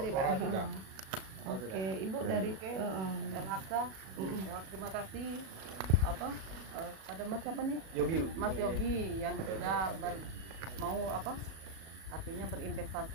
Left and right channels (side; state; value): left; late; 37 ms